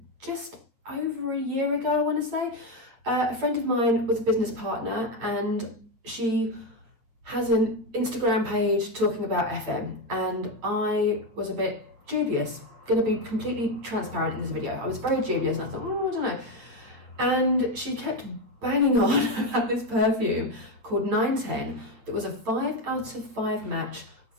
just over a year ago, I want to say. A friend of mine was a business partner and she has an Instagram page talking about FM, and I was a bit dubious. Going to be completely transparent in this video. I was very dubious and I thought, I don't know. And she kept banging on about this perfume called 910 that was a 5 out of 5 match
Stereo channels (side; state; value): left; late; 8.9 ms